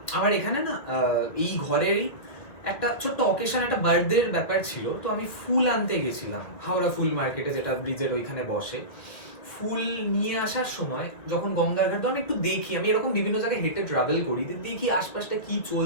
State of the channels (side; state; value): right; late; 2.0 ms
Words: আমার এখানে না এই ঘরেরই একটা ছোট্ট অকেশন, একটা বার্থডের ব্যাপার ছিল, তো আমি ফুল আনতে গেছিলাম হাওড়া ফুল মার্কেটে, যেটা ব্রিজের ওইখানে বসে। ফুল নিয়ে আসার সময় যখন গঙ্গার ঘাট, আমি একটু দেখি, আমি এরকম বিভিন্ন জায়গায় হেঁটে ট্রাভেল করি, দেখি আশপাশটা কি